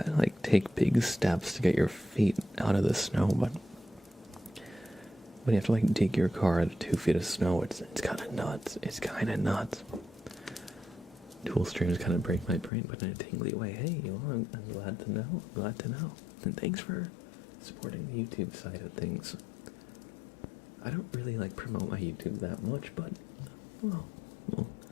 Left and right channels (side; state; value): right; drops out; at 12.7 s